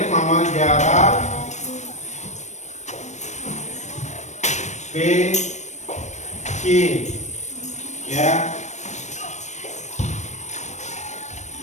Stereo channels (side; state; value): right; late; 0.34 ms